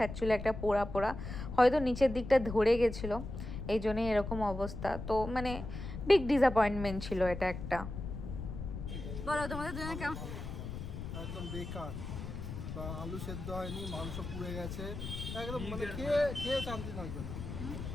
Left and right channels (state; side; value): noise; left; rumble, 7 dB below the sound